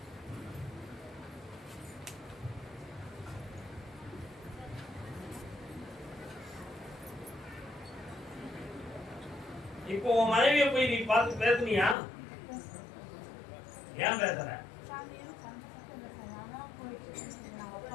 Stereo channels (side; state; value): right; drops out; at 12.0 s